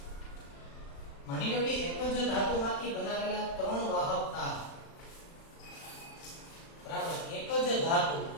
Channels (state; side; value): late; right; 36 ms